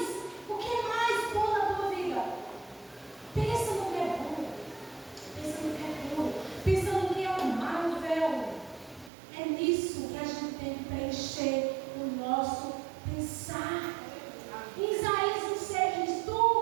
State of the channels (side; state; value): left; drops out; at 9.1 s